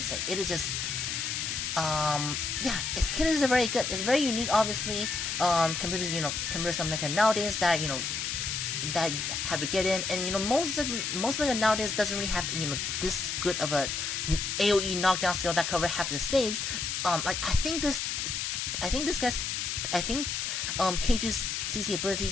say, it is just its kit is very good. It's very unique, obviously, compared to some mecha nowadays that that have to get in, and most mecha nowadays doesn't really have this good of a AOE knockdown skill that cover half the stage. I think Cage's CC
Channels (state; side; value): noise; left; hiss, 2 dB below the sound